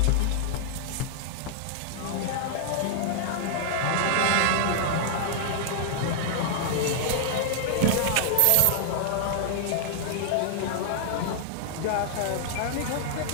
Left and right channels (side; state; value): both; different; correlation -0.01